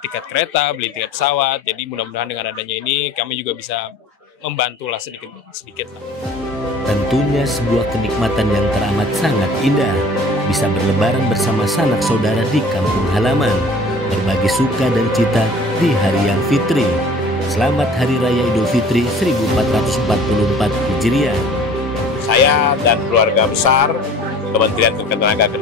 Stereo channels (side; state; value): both; normal; correlation 0.47